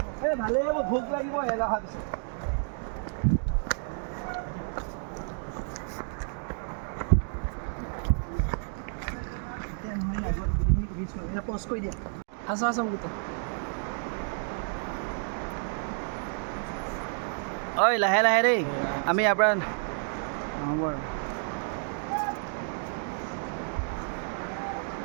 ভালেই হ'ব, ভোক লাগিব এলা অহাৰ পিছত। ব্ৰিজখন পজ কৰি দিয়া আছো গীতা ঐ লাহে লাহে দেই আমি ইয়াৰ পৰা নহ'ব আৰু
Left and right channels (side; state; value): left; silent; 57 dB below the other